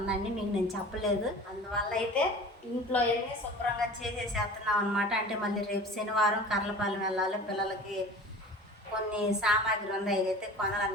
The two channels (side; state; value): both; normal; correlation 0.39